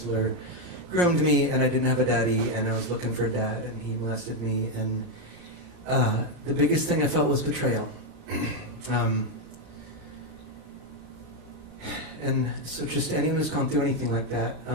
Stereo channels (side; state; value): right; late; 5.6 ms